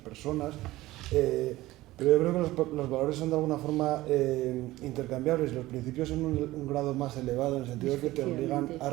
pero yo creo que los valores son de alguna forma intercambiables. Los principios son un grado más elevado en el sentido de que te obligan a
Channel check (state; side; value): quieter; left; 17.4 dB